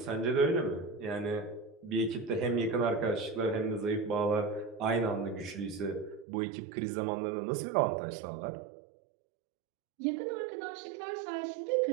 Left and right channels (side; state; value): left; drops out; at 6.2 s